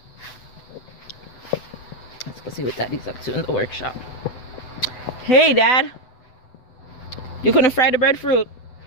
go see what Daddy's up to in the workshop. Hey, Dad. You couldn't fry the breadfruit?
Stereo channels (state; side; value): late; right; 8.0 ms